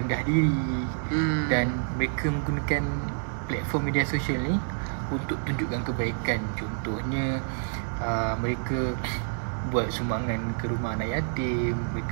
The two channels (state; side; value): silent; left; digital silence